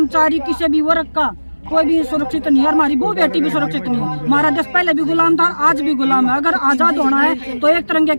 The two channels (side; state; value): both; inverted; correlation -1.00